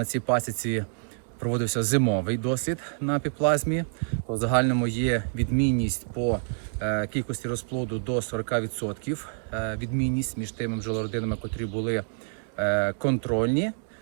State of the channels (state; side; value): silent; left; digital silence